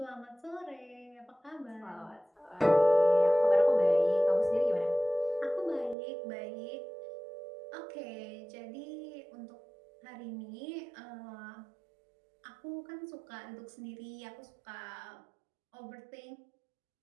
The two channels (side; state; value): left; drops out; at 6.0 s